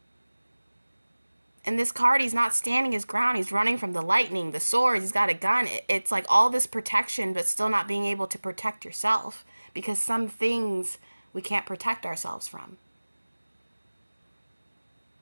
And this card, he's not standing his ground. He's running from the lightning, the swords, he's got a gun. It's like all this protection, but still not being able to protect yourself, because some things we can't protect ourselves from.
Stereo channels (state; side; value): inverted; both; correlation -1.00